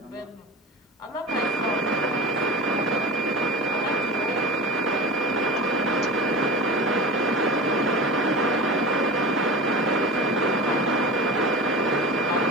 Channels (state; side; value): normal; both; correlation 0.31